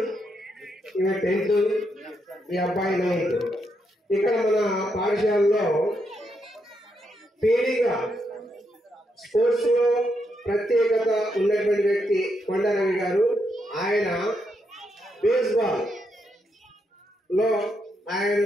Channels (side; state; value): both; normal; correlation 0.80